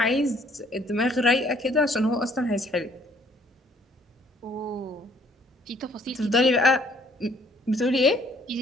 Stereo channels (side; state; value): both; normal; correlation 0.62